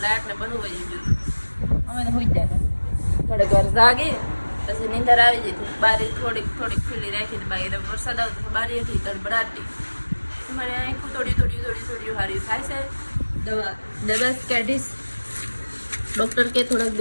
લાઇટ ને બધું વહી ગયું. અમે તો હોઈ જાય થોડીક વાર જાગી પછી નીંદર આવી જતી. બારી થોડીક ખુલ્લી રાખી બાકી વરસાદ આવતો બારી હતી તડબડાટી. તમારે આંખું થોડી હારી થાય છે. દવા કાઢીશ. ડૉક્ટર કે થોડાક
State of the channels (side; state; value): both; inverted; correlation -1.00